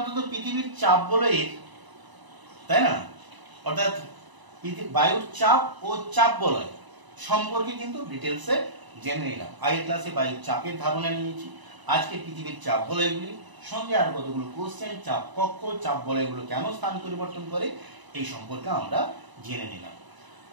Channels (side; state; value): left; late; 1.0 ms